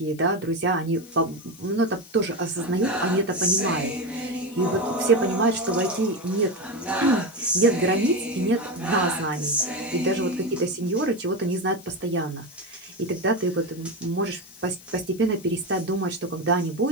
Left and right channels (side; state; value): left; noise; hiss, 22 dB below the sound